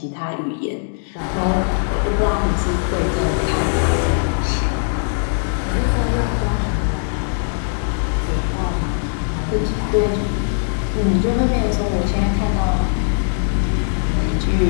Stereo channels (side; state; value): right; silent; digital silence